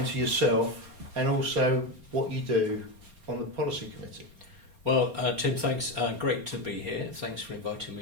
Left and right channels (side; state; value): left; late; 4.3 ms